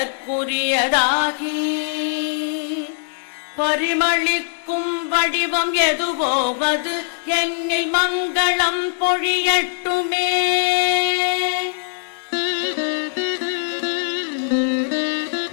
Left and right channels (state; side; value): silent; right; digital silence